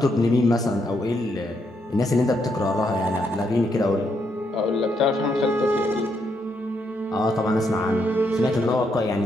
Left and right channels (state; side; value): normal; both; correlation 0.77